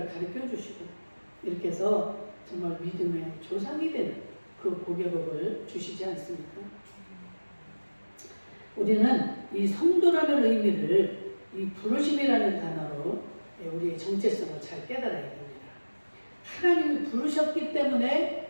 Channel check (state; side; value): inverted; both; correlation -1.00